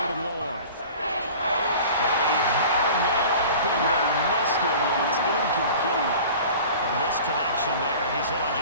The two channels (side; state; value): both; inverted; correlation -0.42